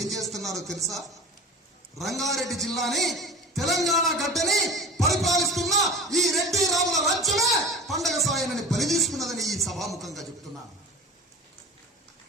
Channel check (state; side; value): normal; both; correlation 0.35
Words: ఏం చేస్తున్నారో తెలుసా? రంగారెడ్డి జిల్లాని, తెలంగాణ గడ్డని పరిపాలిస్తున్న ఈ రెడ్డి రాముల రాజ్యమే పండగ సాయన్నని బలి తీసుకున్నదని ఈ సభాముఖంగా చెప్తున్నాను.